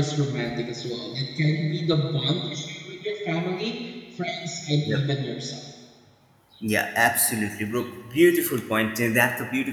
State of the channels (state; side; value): identical; both; correlation 1.00